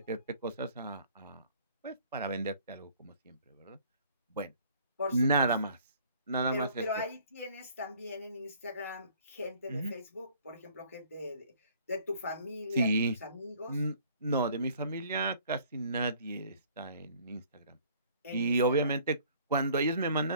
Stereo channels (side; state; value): both; inverted; correlation -0.56